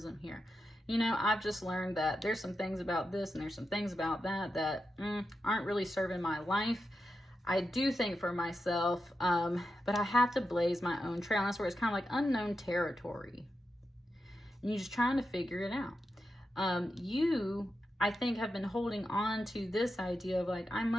here. You know, I've just learned that there's some things about this and there's some things about that that aren't really serving my life. I do think for myself, but I have to blaze my own trail. And that's where it's kind of like unknown territory. And you're just trying to figure it out. You, I think, have been holding on to this idea of like, I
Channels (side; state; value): both; normal; correlation 0.88